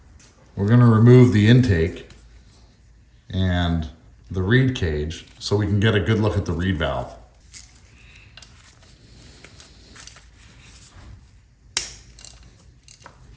We're going to remove the intake and the reed cage so we can get a good look at the reed valve.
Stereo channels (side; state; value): both; identical; correlation 1.00